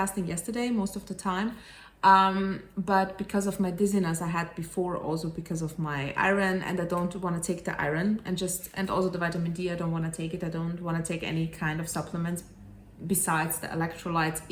yesterday most of the time. But because of my dizziness I had before, also because of my iron, and I don't want to take the iron, and also the vitamin D, I don't want to take it. I don't want to take any kind of supplements besides the electrolytes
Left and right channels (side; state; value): both; identical; correlation 1.00